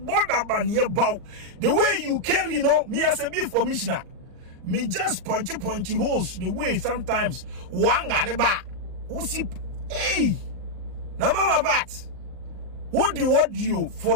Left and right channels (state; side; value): late; left; 39 ms